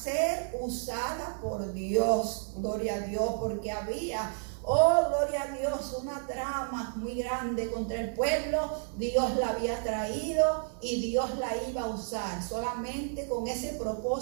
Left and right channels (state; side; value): silent; left; 57 dB below the other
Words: usada por Dios. Gloria a Dios, porque había, oh, gloria a Dios, una trama muy grande contra el pueblo. Dios la había traído y Dios la iba a usar. Solamente con ese